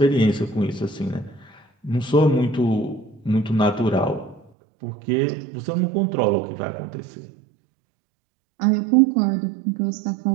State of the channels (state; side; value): drops out; left; at 4.5 s